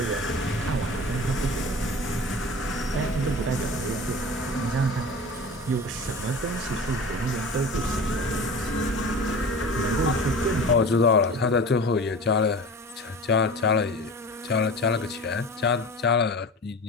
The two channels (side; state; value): both; normal; correlation 0.36